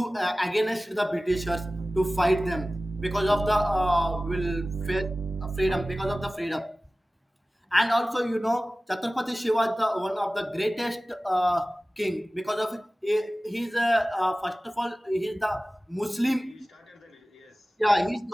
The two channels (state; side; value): normal; both; correlation 0.97